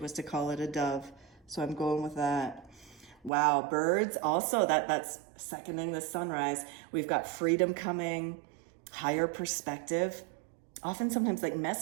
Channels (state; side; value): drops out; left; at 3.3 s